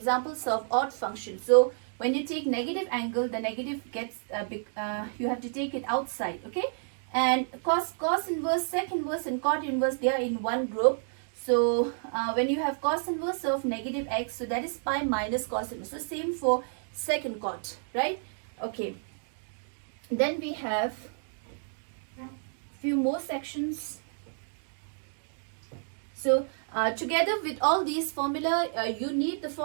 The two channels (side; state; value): left; silent; digital silence